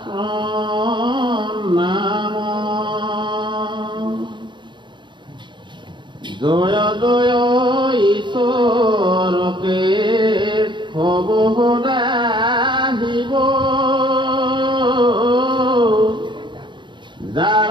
জয় ঈশ্বৰকে হব সদাহিব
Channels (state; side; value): late; left; 0.23 ms